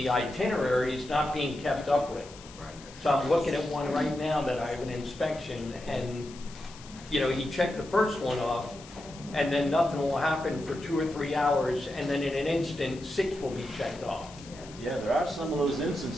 itinerary is not being kept up with. So I'm looking at one right now that I have an inspection, and, you know, he checked the first one off, and then nothing will happen for 2 or 3 hours, and then in an instant, 6 will be checked off. Yeah, there are some of those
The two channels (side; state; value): left; noise; hiss, 19 dB below the sound